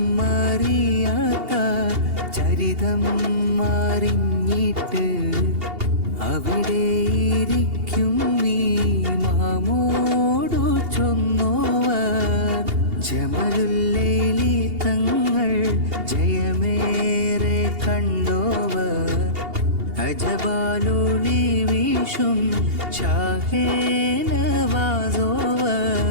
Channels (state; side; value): late; left; 2.8 ms